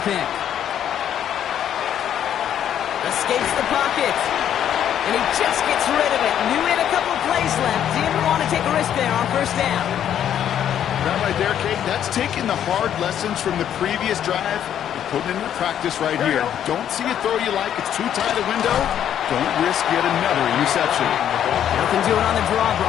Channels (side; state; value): right; quieter; 10.0 dB